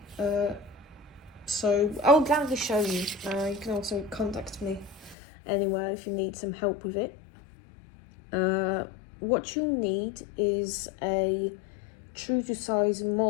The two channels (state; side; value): drops out; right; at 5.2 s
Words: so I'll gladly show you. You can also contact me anywhere if you need some help with it. What you need is a true to size